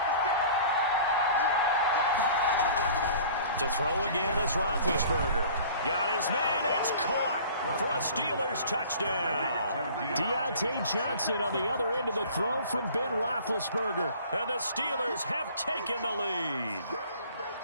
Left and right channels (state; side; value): inverted; both; correlation -0.47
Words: 56. To throw again is Roethlisberger. Got his man, it's caught for a Steelers touchdown. Deontay Johnson on the other end of the throw from Ben Roethlisberger. And the Steelers have taken the lead.